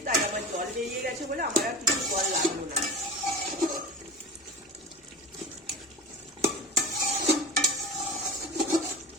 তাই আমার জল বেরিয়ে গেছে বলে আমার আর কিছু জল লাগলো না।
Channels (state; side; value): normal; both; correlation 0.32